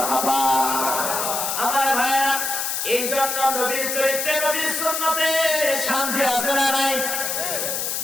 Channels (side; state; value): left; noise; hiss, 1 dB below the sound